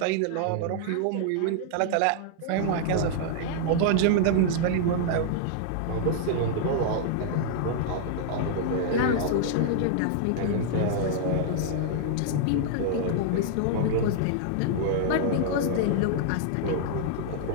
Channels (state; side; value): different; both; correlation -0.01